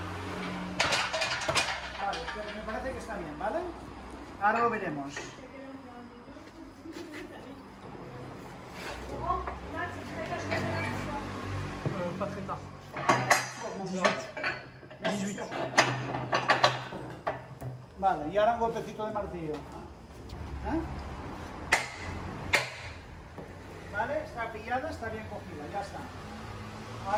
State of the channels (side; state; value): both; identical; correlation 1.00